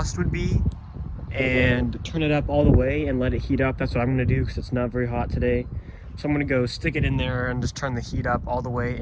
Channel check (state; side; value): identical; both; correlation 1.00